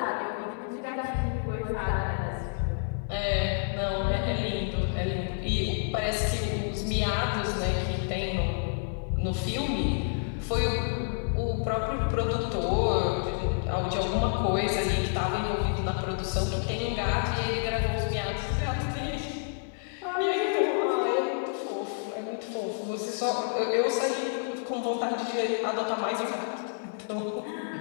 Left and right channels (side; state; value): right; silent; digital silence